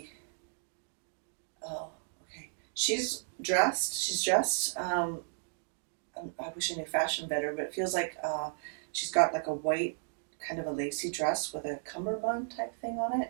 oh, okay. She's dressed, I wish I knew fashion better, but it feels like she's got like a white, kind of a lacy dress with a cummerbund type thing on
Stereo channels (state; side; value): silent; left; digital silence